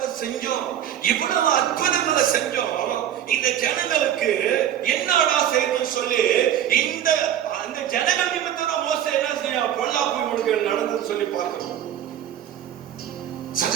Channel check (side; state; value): left; quieter; 10.6 dB